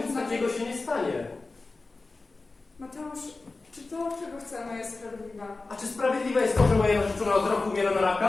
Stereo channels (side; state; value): right; quieter; 3.6 dB